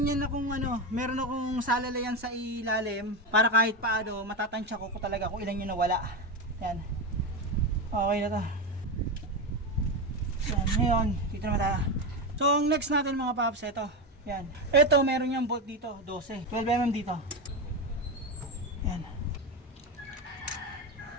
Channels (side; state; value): both; normal; correlation 0.14